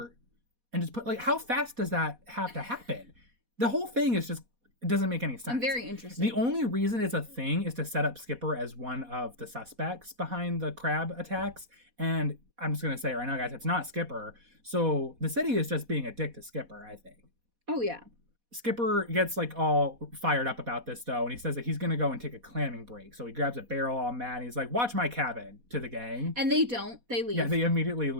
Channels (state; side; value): late; left; 4.1 ms